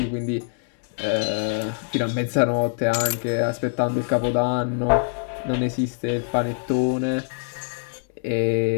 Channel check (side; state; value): right; silent; 63 dB below the other